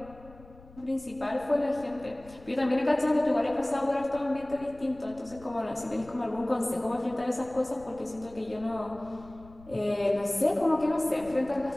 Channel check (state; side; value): noise; left; rumble, 21 dB below the sound